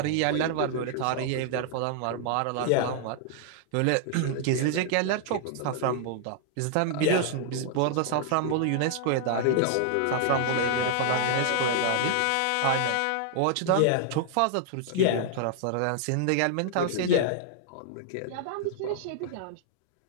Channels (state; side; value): different; both; correlation -0.01